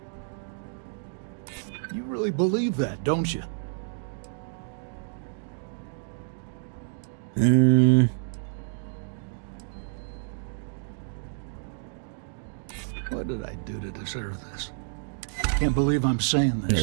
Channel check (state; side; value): silent; left; digital silence